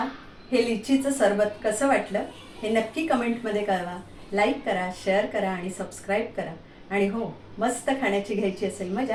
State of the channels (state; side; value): identical; both; correlation 1.00